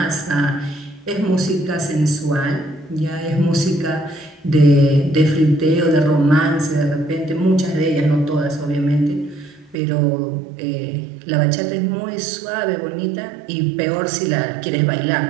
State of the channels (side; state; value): left; drops out; at 9.8 s